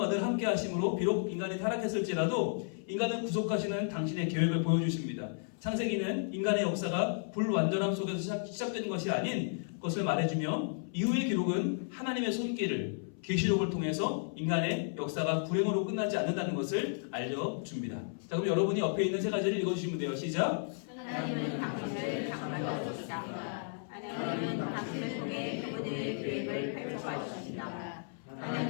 늘 함께 하심으로 비록 인간이 타락했을지라도 인간을 구속하시는 당신의 계획을 보여주십니다. 창세기는 인간의 역사가 불완전함 속에서 시작되는 것이 아닌 것을 말해주며 이후의 기록은 하나님의 손길을 계시록을 통해서 인간의 역사가 불행으로 끝나지 않는다는 것을 알려줍니다. 자, 그럼 여러분이 옆에 있는 세 가지를 읽어주시면 돼요. 시작! 하나님은 당신을 장만하셨습니다. 하나님은 당신을 통해 그분의 계획을 펼쳐가십니다.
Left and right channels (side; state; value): right; silent; 55 dB below the other